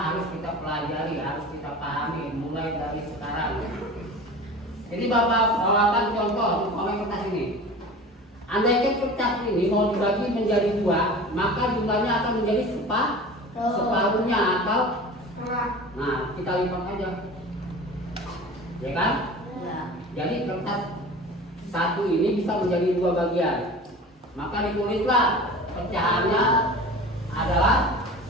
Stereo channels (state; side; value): normal; both; correlation 0.37